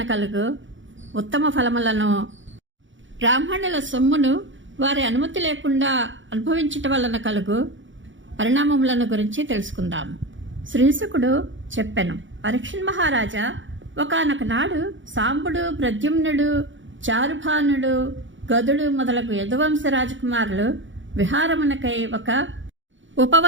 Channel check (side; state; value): left; late; 0.56 ms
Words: కలుగు ఉత్తమ ఫలములను, బ్రాహ్మణుల సొమ్మును వారి అనుమతి లేకుండా అనుభవించటం వలన కలుగు పరిణామములను గురించి తెలుసుకుందాము. శ్రీశుకుడు చెప్పెను, పరీక్షణ్ మహారాజా, ఒకానొక నాడు సాంబుడు, ప్రద్యుమ్నుడు, చారుభానుడు, గదుడు మొదలగు యదువంశ రాజకుమారులు విహారమునకై ఒక